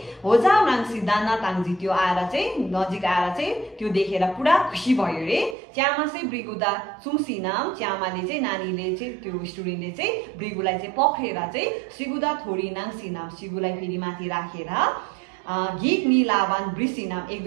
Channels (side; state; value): left; drops out; at 5.6 s